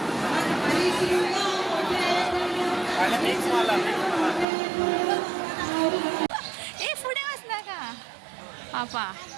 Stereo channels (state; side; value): drops out; left; at 4.5 s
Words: ए फुडें वचनाका पापा.